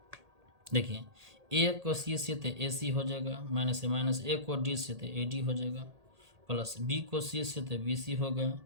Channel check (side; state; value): left; late; 1.8 ms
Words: देखिए a को c से तो ac हो जाएगा, माइनस से माइनस, a को d से तो ad हो जाएगा, प्लस b को c से तो bc हो गया,